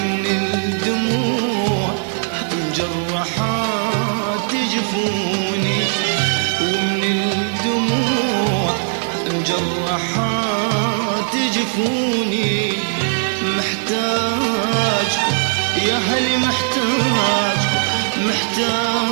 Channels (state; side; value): silent; left; digital silence